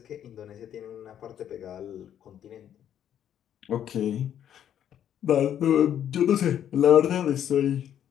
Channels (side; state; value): right; quieter; 10.0 dB